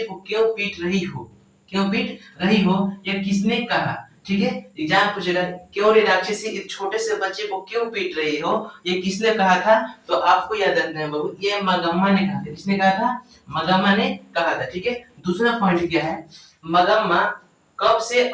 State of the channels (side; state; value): both; identical; correlation 1.00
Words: क्यों पीट रही हो, क्यों पीट रही हो, यह किसने कहा। ठीक है, एग्जाम पूछेगा क्यों रे राक्षसी इस छोटे से बच्चे को क्यों पीट रही हो, ये किसने कहा था, तो आपको याद रखना है बाबू ये मगम्मा ने कहा था। किसने कहा था, मगम्मा ने कहा था। ठीक है, दूसरा पॉइंट क्या है, मगम्मा कब से